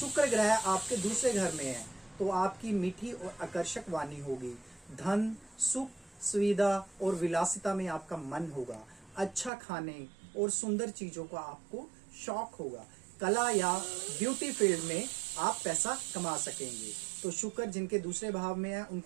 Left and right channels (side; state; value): left; drops out; at 9.5 s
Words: ग्रह आपके दूसरे घर में है तो आपकी मीठी और आकर्षक वाणी होगी। धन, सुख, सुविधा और विलासिता में आपका मन होगा। अच्छा खाने और सुंदर चीजों का आपको शौक होगा। कला या ब्यूटी फील्ड में आप पैसा कमा सकेंगे। तो शुक्र जिनके दूसरे भाव में है